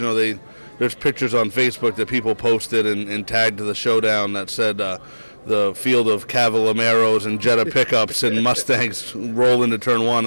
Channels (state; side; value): inverted; both; correlation -1.00